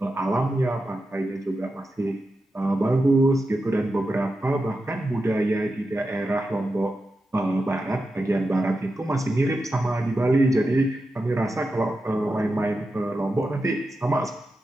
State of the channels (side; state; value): both; normal; correlation 0.90